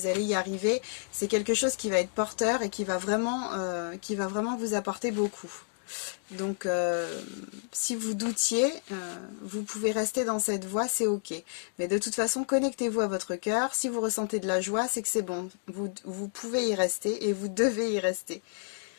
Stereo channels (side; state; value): right; silent; digital silence